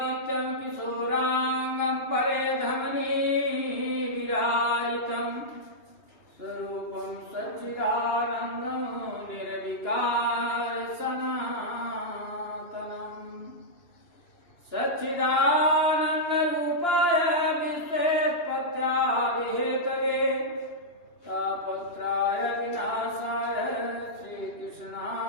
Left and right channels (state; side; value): late; right; 2.9 ms